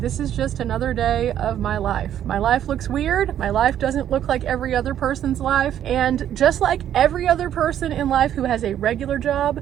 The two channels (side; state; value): left; quieter; 10.6 dB